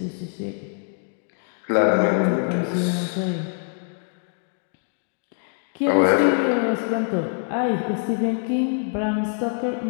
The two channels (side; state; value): right; silent; 58 dB below the other